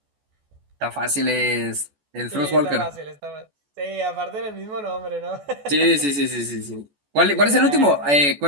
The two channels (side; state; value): left; late; 14 ms